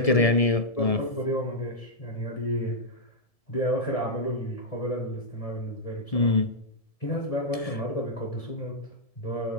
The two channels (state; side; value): late; right; 1.7 ms